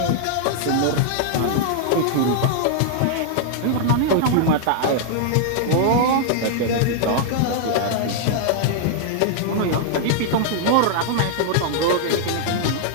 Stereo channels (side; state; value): both; different; correlation -0.01